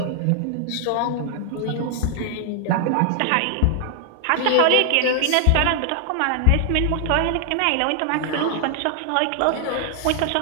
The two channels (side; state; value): both; different; correlation 0.00